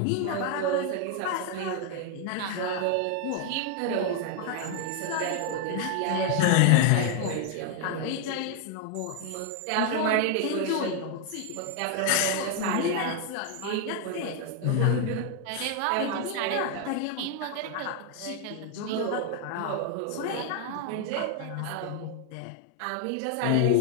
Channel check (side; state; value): both; different; correlation 0.00